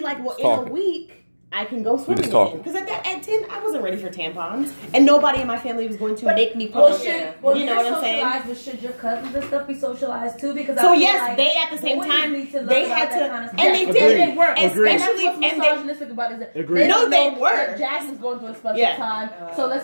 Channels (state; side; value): inverted; both; correlation -1.00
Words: like, well, in a week, I can go swimming again. Because at 10, I wasn't ready for tampons. And nobody in my family was going to make me put you know what I'm saying? But should your cousins and stuff be socialized too? Because so yes, they at the same time, they had to, and they did. They were. Especially, and what's misogynistic about is that no, they were. Jasmine's going through a special time. So